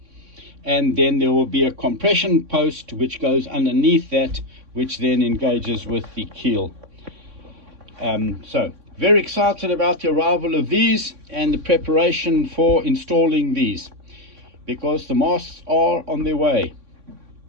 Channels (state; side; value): late; left; 3.6 ms